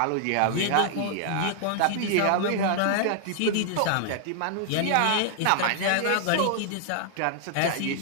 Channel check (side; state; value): both; different; correlation 0.00